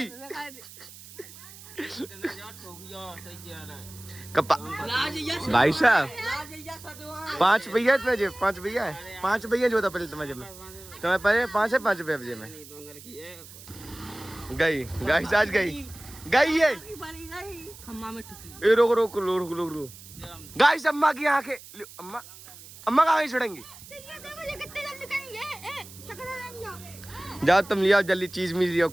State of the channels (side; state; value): right; noise; hiss, 18 dB below the sound